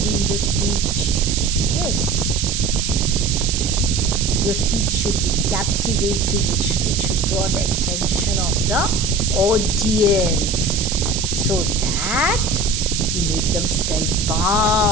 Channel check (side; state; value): right; noise; hiss, 2 dB below the sound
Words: in the speech. Yes, your speech should be captivating. It should draw the attention of the audience, so that you make them